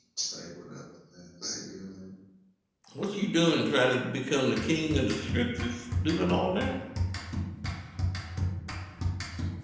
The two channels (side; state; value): both; identical; correlation 1.00